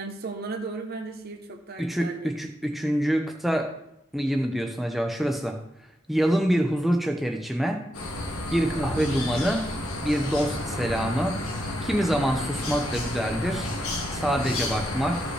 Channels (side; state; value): both; normal; correlation 0.84